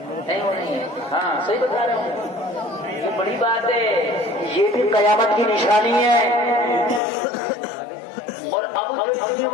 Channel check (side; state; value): right; drops out; at 7.0 s